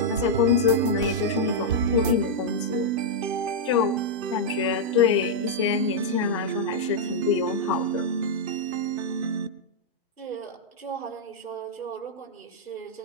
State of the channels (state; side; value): normal; both; correlation -0.05